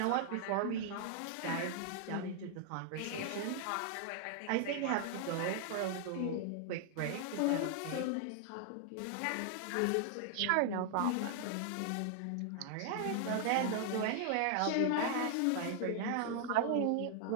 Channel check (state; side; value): different; both; correlation 0.00